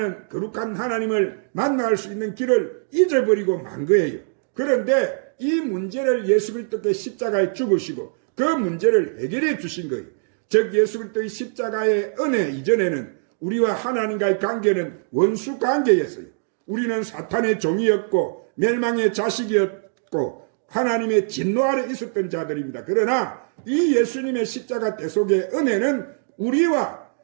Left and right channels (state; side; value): silent; left; digital silence